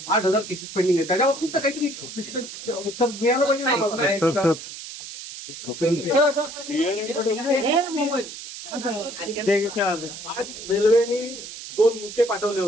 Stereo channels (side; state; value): right; noise; hiss, 11 dB below the sound